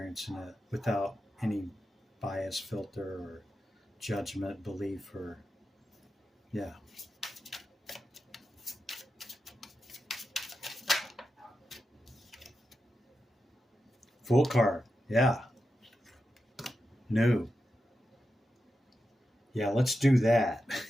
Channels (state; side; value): normal; both; correlation 0.89